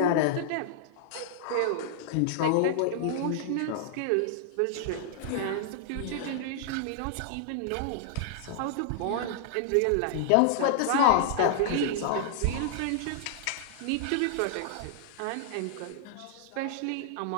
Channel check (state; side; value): different; both; correlation -0.01